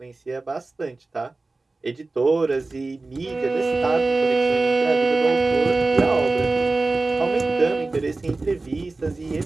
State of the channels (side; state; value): left; quieter; 3.4 dB